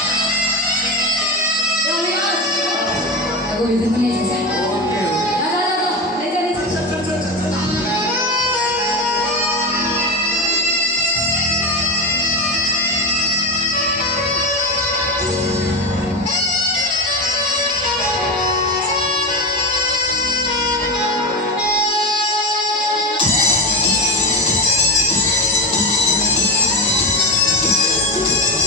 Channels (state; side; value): normal; both; correlation 0.19